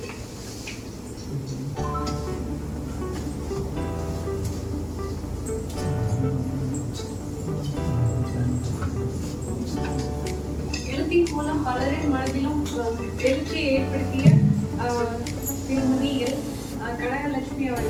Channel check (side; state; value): both; identical; correlation 1.00